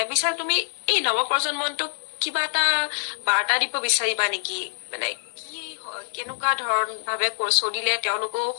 বিশাল, তুমি এই নৱপ্ৰজন্মটোক কিবা এটা বাৰ্তা দিব বিচাৰিবা নেকি? মানে কেনেকুৱা ধৰণ ভাৱে চলিলে তেওঁলোকেও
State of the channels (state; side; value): silent; right; digital silence